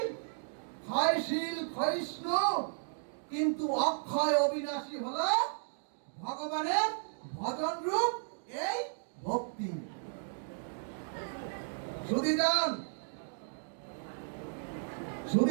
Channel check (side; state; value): left; silent; digital silence